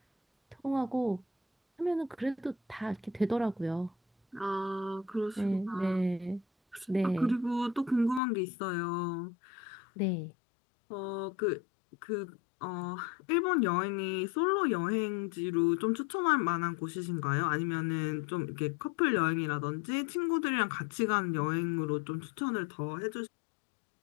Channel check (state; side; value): drops out; right; at 8.2 s